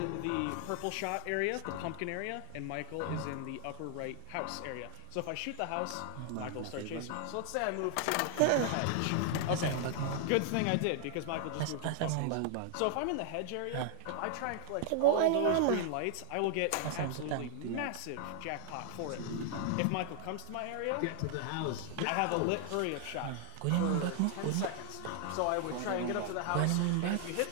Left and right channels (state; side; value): different; both; correlation 0.00